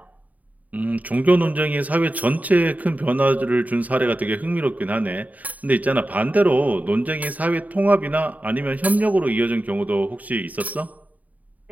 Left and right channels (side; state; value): left; late; 0.074 ms